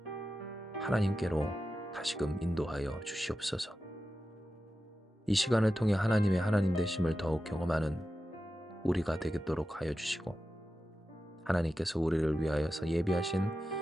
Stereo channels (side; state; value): both; normal; correlation 0.92